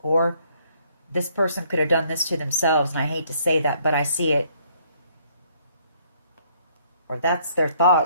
Or this person could have done this to themselves, and I hate to say that, but I see it. Or that's their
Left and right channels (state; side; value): inverted; both; correlation -0.66